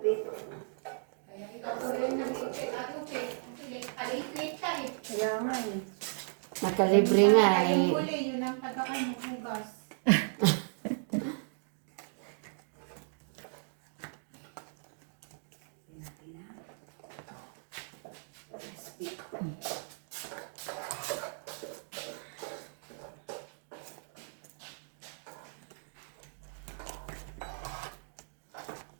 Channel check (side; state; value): left; silent; digital silence